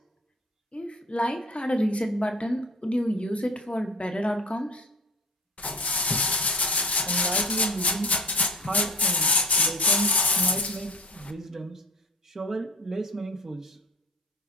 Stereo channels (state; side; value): normal; both; correlation 0.39